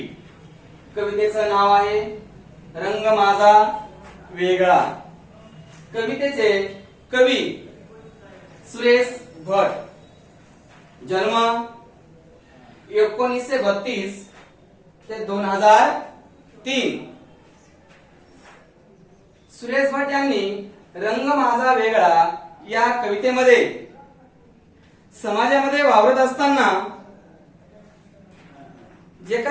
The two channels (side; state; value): both; identical; correlation 1.00